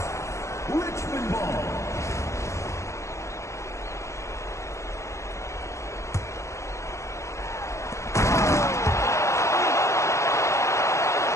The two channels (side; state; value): right; late; 0.14 ms